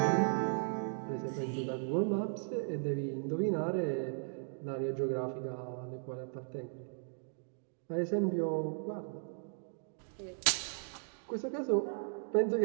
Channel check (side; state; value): left; silent; 53 dB below the other